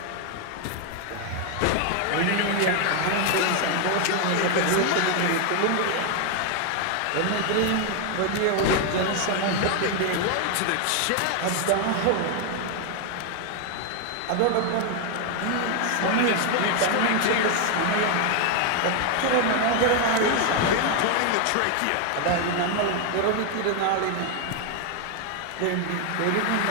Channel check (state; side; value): different; both; correlation 0.01